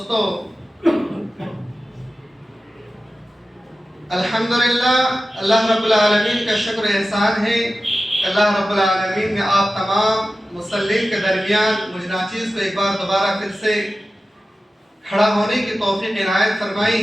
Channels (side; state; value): both; normal; correlation 0.94